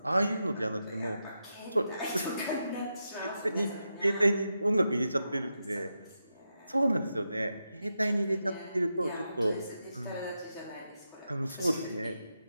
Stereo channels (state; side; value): inverted; both; correlation -0.87